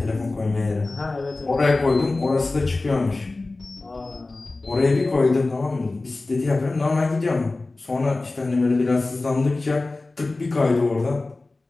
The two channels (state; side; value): quieter; right; 3.3 dB